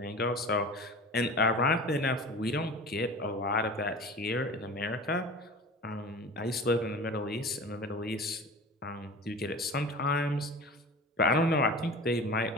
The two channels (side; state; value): both; normal; correlation 0.36